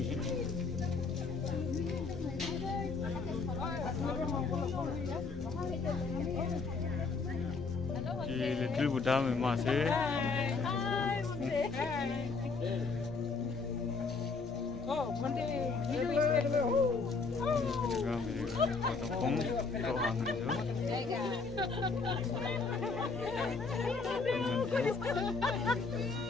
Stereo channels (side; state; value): right; quieter; 4.4 dB